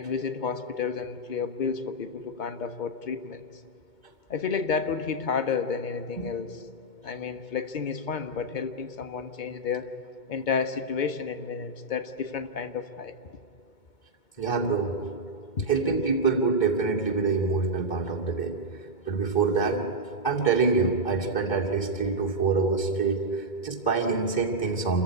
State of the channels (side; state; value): right; late; 2.2 ms